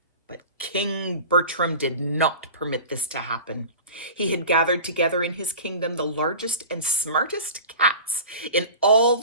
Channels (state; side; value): inverted; both; correlation -0.37